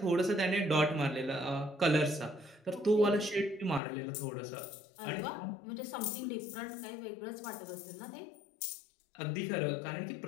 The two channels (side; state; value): right; drops out; at 3.8 s